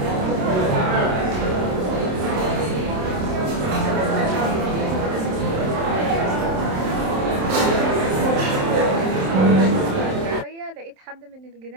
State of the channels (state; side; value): late; left; 27 ms